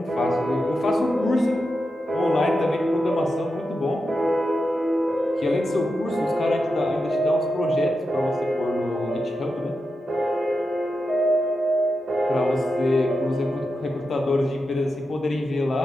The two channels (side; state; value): both; normal; correlation 0.89